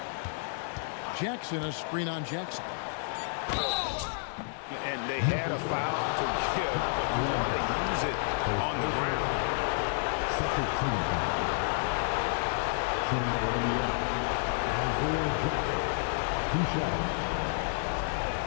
Jackson, a screen on Jackson. And they had a foul to give, but you want to use it on the ground.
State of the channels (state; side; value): silent; right; 58 dB below the other